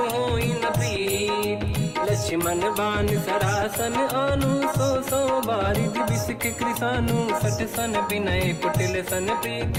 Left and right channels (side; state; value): both; identical; correlation 1.00